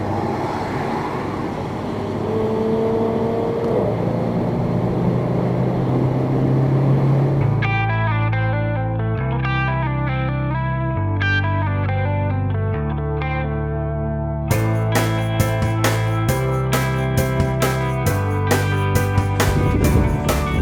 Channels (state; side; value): identical; both; correlation 1.00